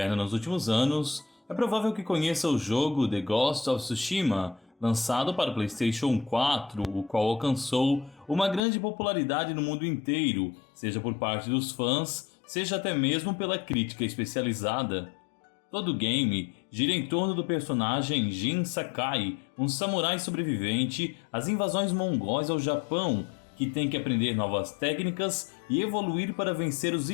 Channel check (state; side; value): drops out; right; at 8.6 s